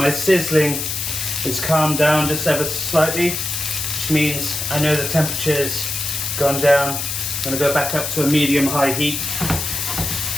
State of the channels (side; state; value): left; noise; hiss, 3 dB below the sound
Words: sizzling is calmed down just ever so slightly, which means I know the temperature's gone down. I'm going to go back up to a medium-high heat.